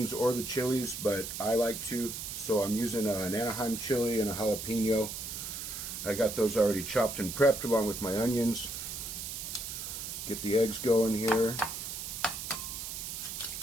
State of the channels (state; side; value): noise; right; hiss, 6 dB below the sound